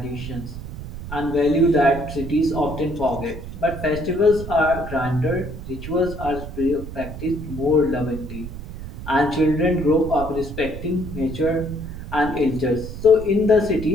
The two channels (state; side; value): noise; right; rumble, 10 dB below the sound